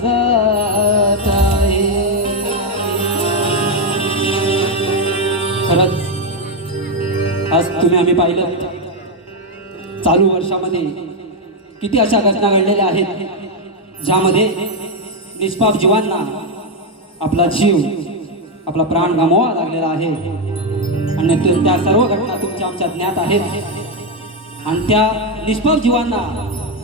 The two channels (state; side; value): normal; both; correlation 0.05